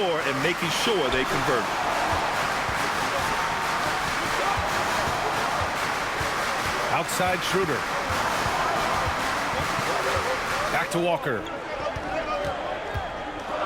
and making sure they convert. Outside Schroeder. Back to Walker.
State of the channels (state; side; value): identical; both; correlation 1.00